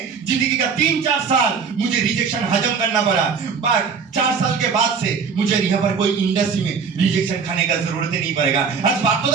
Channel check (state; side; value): quieter; left; 5.8 dB